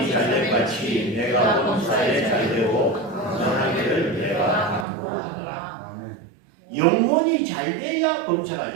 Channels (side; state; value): left; drops out; at 4.9 s